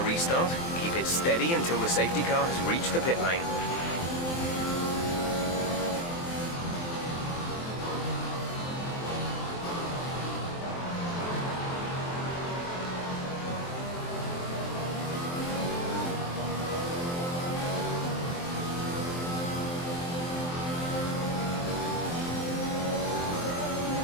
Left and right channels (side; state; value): right; late; 23 ms